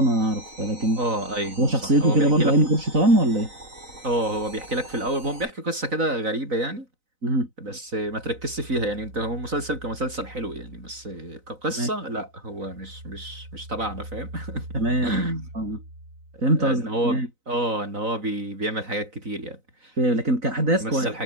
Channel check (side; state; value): left; late; 4.0 ms